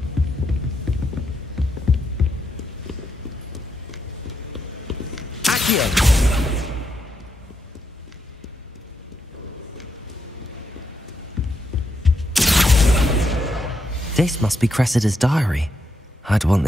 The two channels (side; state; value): both; normal; correlation 0.81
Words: This must be Cressida's diary. I'd want